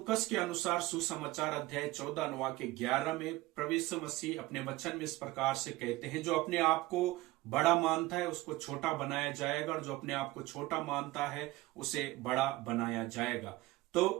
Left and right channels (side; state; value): left; quieter; 18.8 dB